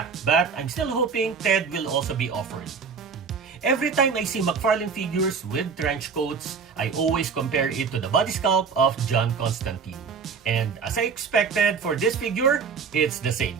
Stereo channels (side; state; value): left; quieter; 5.8 dB